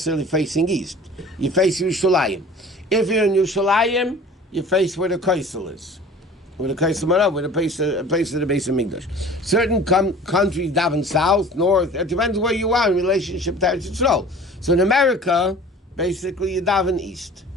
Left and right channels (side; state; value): both; normal; correlation 0.44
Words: facing east. You face Yerushalayim. If you're in Yerushalayim, you face where the Kaisel is. with a Kaisam with a place of the base of Migdash. Certain countries daven south, north. It depends where you are in relationship to Eretz Yisrael. So in America, basically you daven east.